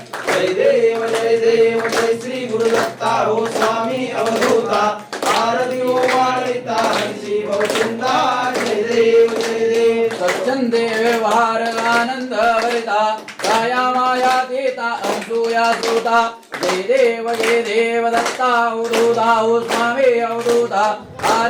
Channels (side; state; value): both; identical; correlation 1.00